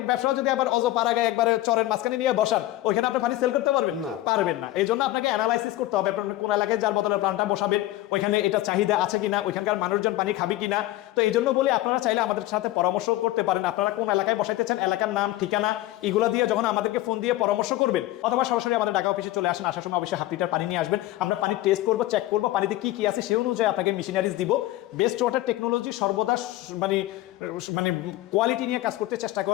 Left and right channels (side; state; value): right; quieter; 16.2 dB